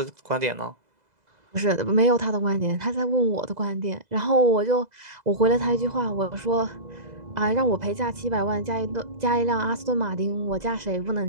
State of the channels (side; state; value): left; late; 2.0 ms